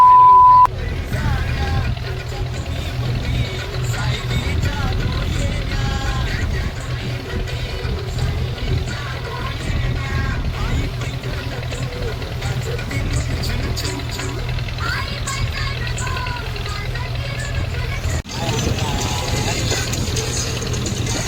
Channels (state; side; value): identical; both; correlation 1.00